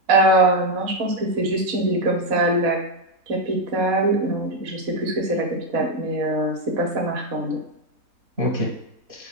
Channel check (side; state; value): left; late; 4.0 ms